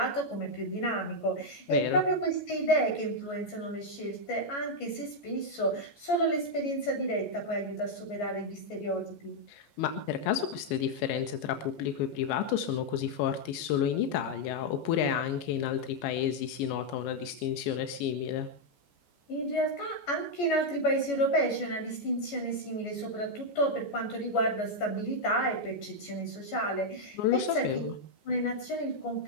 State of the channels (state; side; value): late; right; 14 ms